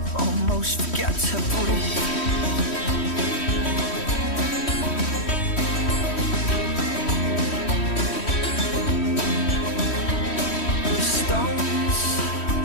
almost forget to breathe. Stones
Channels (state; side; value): late; right; 3.1 ms